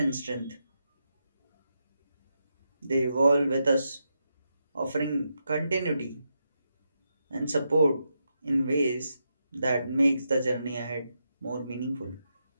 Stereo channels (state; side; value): inverted; both; correlation -0.85